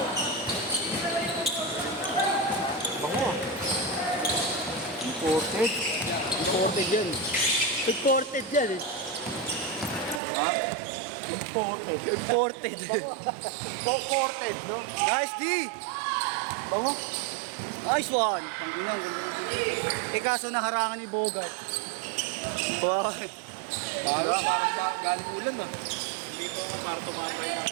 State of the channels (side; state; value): left; drops out; at 10.2 s